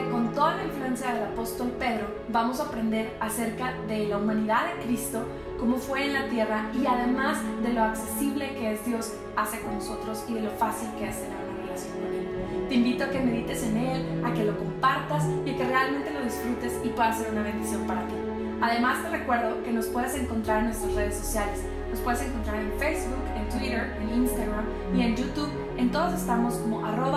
con toda la influencia del apóstol Pedro vamos a aprender acerca de la humanidad de Cristo, cómo fue en la tierra y además de lo accesible que es Dios hace con nosotros y de lo fácil que es tener una relación con Él. Te invito a que medites en Él, a que lo compartas y a que realmente lo disfrutes y pueda ser una bendición para ti. Además te recuerdo que nos puedes encontrar en nuestras redes sociales. Nos puedes encontrar en Facebook, en Twitter, en Instagram y en YouTube. En todos estamos como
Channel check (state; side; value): identical; both; correlation 1.00